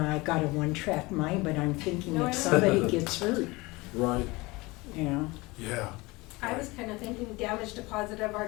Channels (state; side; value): quieter; right; 23.1 dB